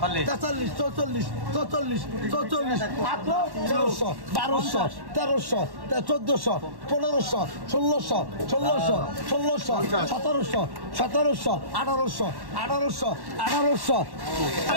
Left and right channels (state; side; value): late; left; 1.1 ms